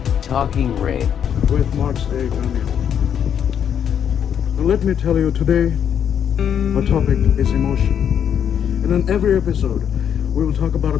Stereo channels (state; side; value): quieter; right; 8.6 dB